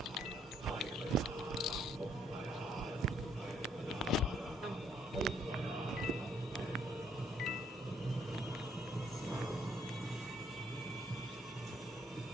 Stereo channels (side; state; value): both; normal; correlation 0.68